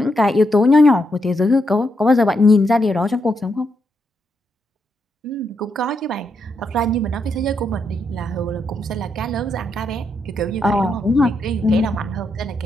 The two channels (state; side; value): normal; both; correlation 0.81